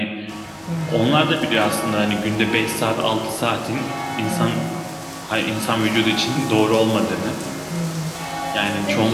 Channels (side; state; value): both; identical; correlation 1.00